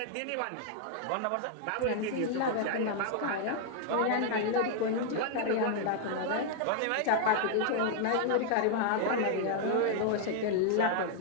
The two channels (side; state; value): both; different; correlation 0.00